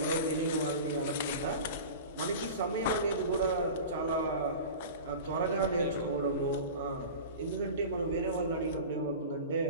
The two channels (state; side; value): inverted; both; correlation -0.33